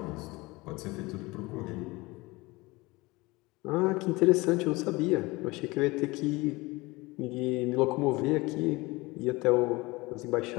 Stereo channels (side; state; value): right; quieter; 22.6 dB